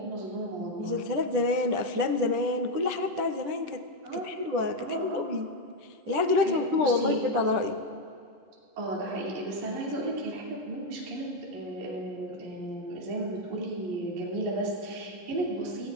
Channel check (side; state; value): left; late; 10 ms